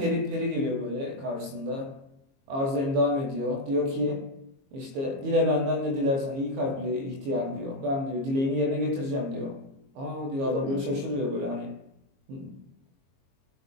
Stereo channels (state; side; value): late; left; 22 ms